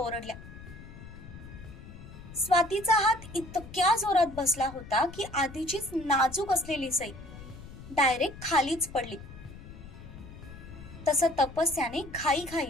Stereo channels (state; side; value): noise; left; rumble, 15 dB below the sound